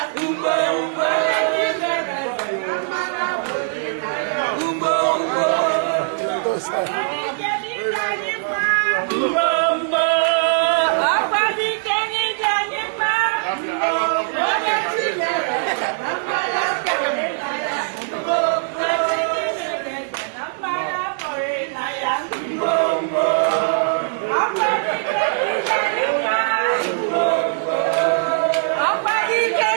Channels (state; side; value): silent; left; digital silence